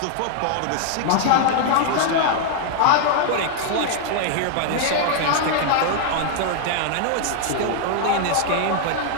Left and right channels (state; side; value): different; both; correlation 0.00